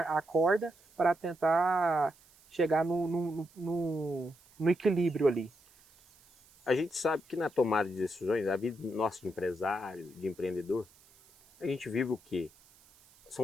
corda para tentar chegar no equilíbrio ali. A gente sabe que na tomada de decisões, a vida nossa de empresário, de empreendedor, a gente vive o quê?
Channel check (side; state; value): right; noise; hiss, 28 dB below the sound